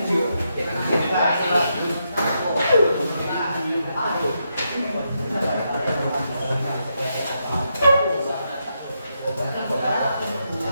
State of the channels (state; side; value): inverted; both; correlation -0.82